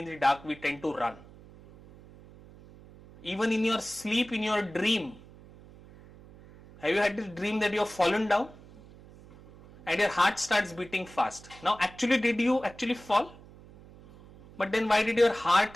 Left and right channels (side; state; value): right; noise; hum, 21 dB below the sound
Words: the dark, we tend to run. Even in your sleep, in your dream, have you had this dream that you have fallen down and your heart starts beating fast? Now, actually, did you actually fall? But then why did your